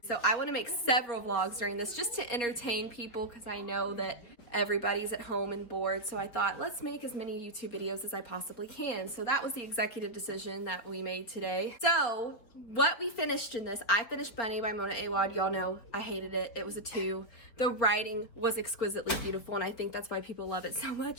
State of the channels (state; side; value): late; right; 4.5 ms